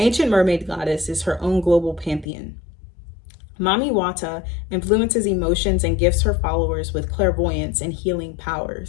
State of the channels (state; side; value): drops out; right; at 2.2 s